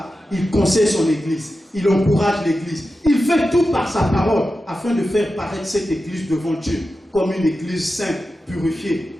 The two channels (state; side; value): normal; both; correlation 0.92